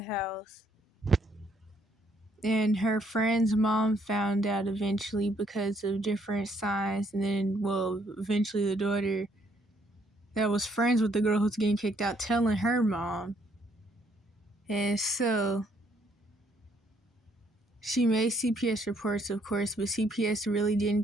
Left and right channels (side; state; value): both; normal; correlation 0.68